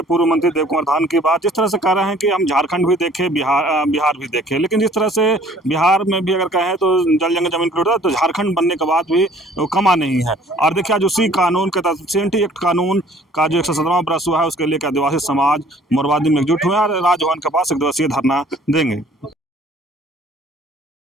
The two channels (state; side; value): normal; both; correlation 0.55